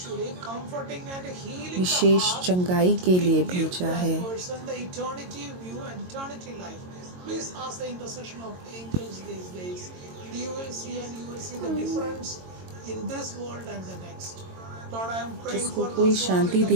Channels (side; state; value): left; late; 22 ms